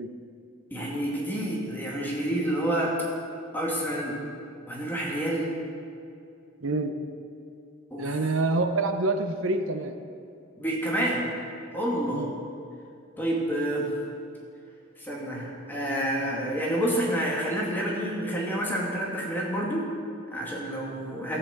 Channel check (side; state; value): both; normal; correlation 0.40